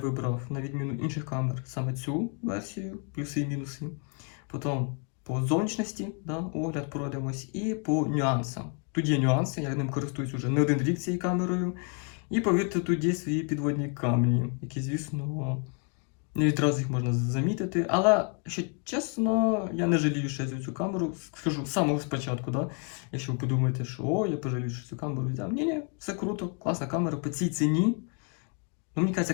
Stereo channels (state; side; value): quieter; right; 38.8 dB